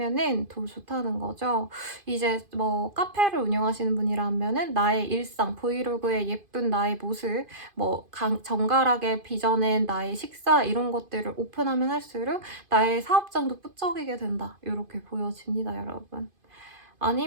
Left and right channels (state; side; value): late; left; 2.5 ms